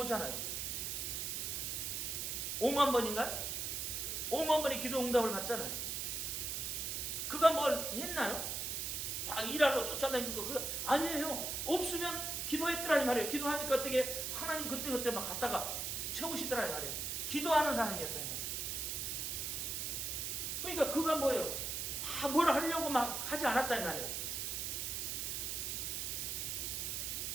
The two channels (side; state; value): right; noise; hiss, 2 dB below the sound